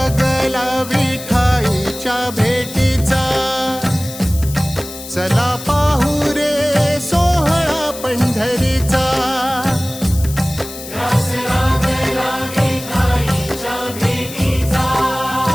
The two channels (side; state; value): left; noise; hiss, 13 dB below the sound